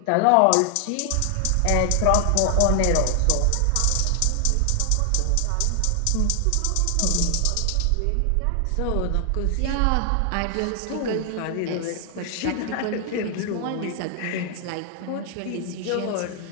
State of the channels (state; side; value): different; both; correlation 0.00